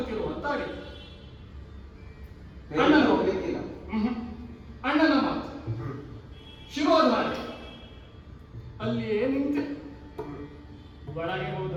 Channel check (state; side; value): identical; both; correlation 1.00